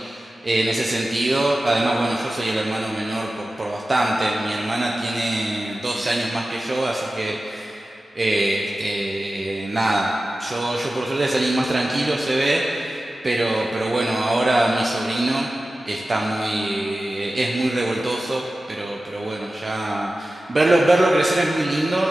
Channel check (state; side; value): normal; both; correlation 0.95